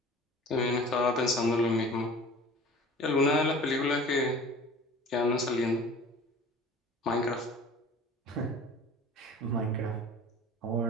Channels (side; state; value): both; normal; correlation 0.43